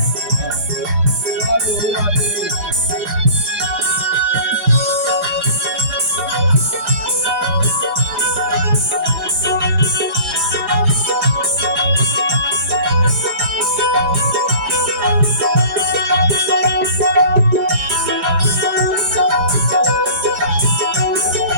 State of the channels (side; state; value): left; late; 4.9 ms